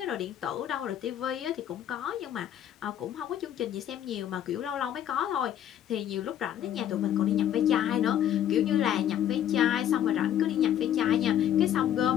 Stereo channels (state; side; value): quieter; right; 10.7 dB